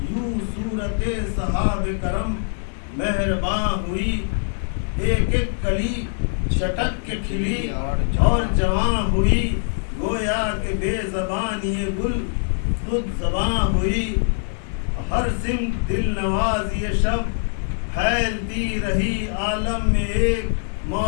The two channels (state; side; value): silent; right; digital silence